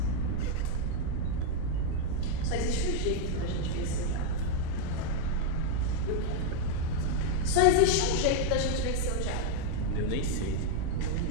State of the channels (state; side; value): different; both; correlation 0.00